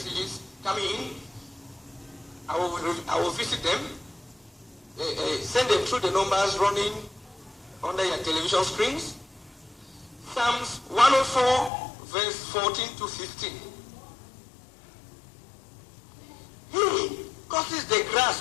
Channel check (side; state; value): right; drops out; at 11.7 s